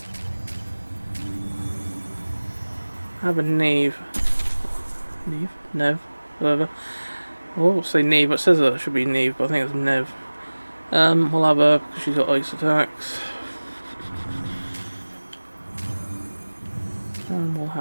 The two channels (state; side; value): inverted; both; correlation -1.00